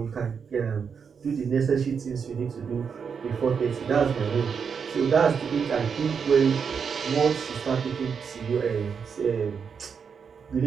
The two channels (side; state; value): left; quieter; 6.4 dB